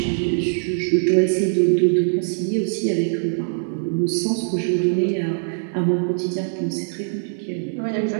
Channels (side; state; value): left; silent; 64 dB below the other